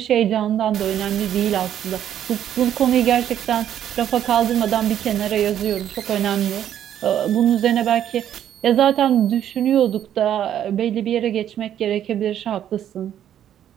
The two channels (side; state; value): left; quieter; 10.5 dB